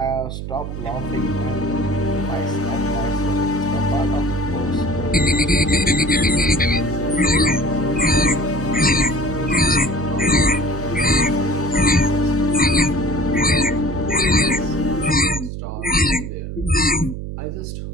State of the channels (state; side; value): noise; right; hum, 7 dB below the sound